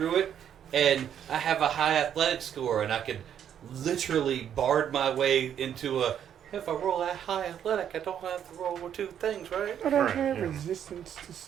it, and I have a high athletic score, and I could literally bard my way into a. If I roll that high athletic, I don't have to roll with 2 things, right? I don't Right, have yeah. resistance to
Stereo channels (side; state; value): left; quieter; 9.3 dB